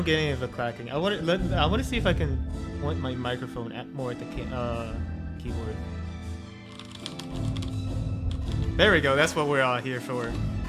get any of the clacking. I want to see if I can point my microphone more at the keyboard. There we go. That's what we're all here for.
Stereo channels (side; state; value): both; identical; correlation 1.00